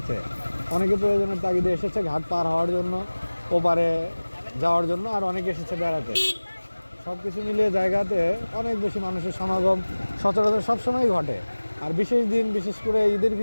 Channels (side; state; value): both; inverted; correlation -1.00